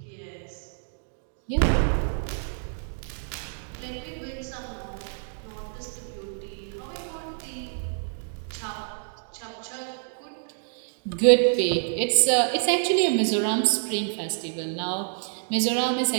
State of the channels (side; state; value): left; silent; digital silence